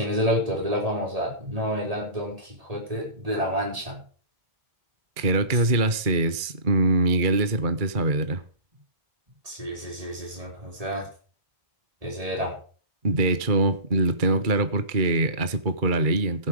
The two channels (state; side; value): late; left; 2.3 ms